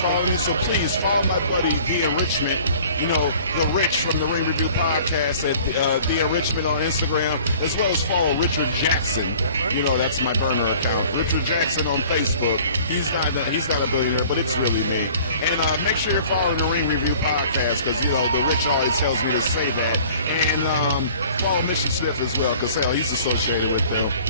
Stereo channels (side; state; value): both; inverted; correlation -0.50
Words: me, so please follow my buddy, The Enrichment. You know, The Rich from the Ring Review Podcast at The Enrichment on Instagram, as well as follow Richard Jackson. You know, that's my burner account. Richard Jackson on Facebook. He's not a billionaire, but it's really me. And make sure you're following the Ring Review Podcast, because, you know, The Rich always tells me to say that. And follow Mission Smith as well, because, hell, he's associated with them.